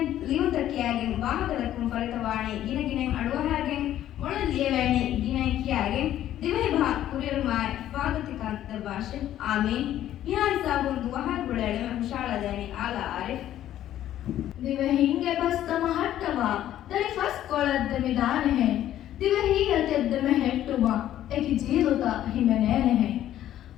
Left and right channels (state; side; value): quieter; right; 12.2 dB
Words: ಲಿಯುತಕ್ಕಿಯಾಗೆಂ ವಾಹಕದಕ್ಕಂ ಫಲಿತವಾಣಿ ಗಿನಗಿನೆ ಅಡುವಹಾಗೆಂ ಮೊಳ ಲಿಯವೇಣಿ ಗಿನಕಿಯಾಗೆಂ ದಿವೈ ಭಾ ಕುರಿರುಮಾಯ್ ಸ್ವಾಗತಿಕಾಂತ ಭಾಷೆ ಆಮೀನ್ ಯಾರ್ ಸಾಬುನ್ ದುವಹಾಗ್ ಗುಳೆಳೆ ಹುಷಾಳದೇನಿ ಆಲ ಆರಿಫ್ ದಿವೆ ಹಿಂಗೆ ಬಸ್ತಮ ಹಟ್ಟವ ದರಿ ಫಸ್ ಕೊಳದ್ದಮಿ ದಾನೆ ಹೆ ದಿವೆ ಹೀಗೆ ತೆದ್ದಮೆ ಹೆಟ್ಟುವ ಏಕಿ ಜೀರುತ ಹಿಮೆನೇನೆ ಹೆ